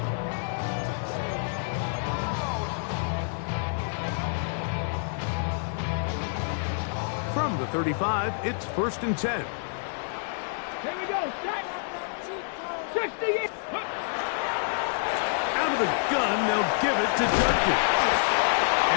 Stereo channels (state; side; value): silent; right; digital silence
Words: From the 35, it's 1st and 10. Here we go. 60. Out of the gun, they'll give it to Judkins. And